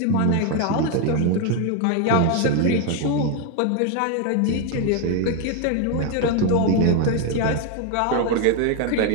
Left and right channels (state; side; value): different; both; correlation 0.01